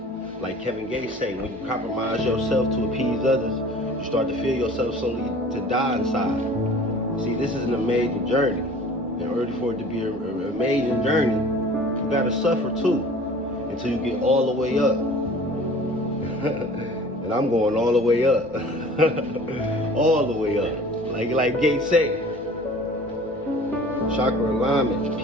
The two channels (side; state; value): both; normal; correlation 0.45